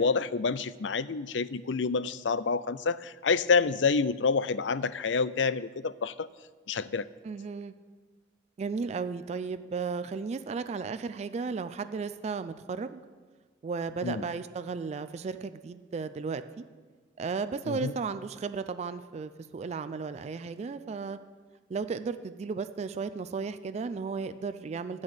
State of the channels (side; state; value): both; normal; correlation -0.09